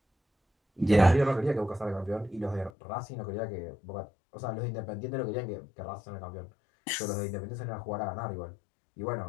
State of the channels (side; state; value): right; drops out; at 2.7 s